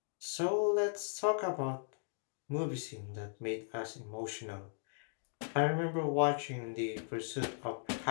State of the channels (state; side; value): silent; right; digital silence